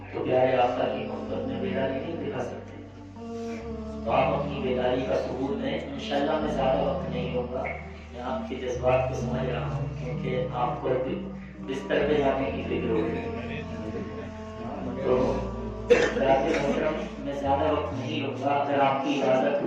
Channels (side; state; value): both; identical; correlation 1.00